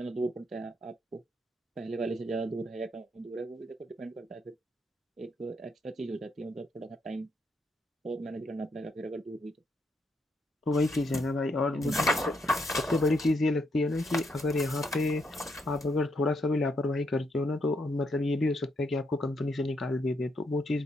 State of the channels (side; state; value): both; normal; correlation 0.77